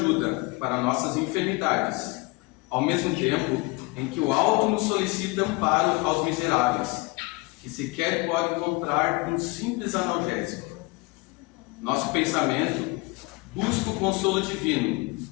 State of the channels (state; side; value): quieter; right; 24.8 dB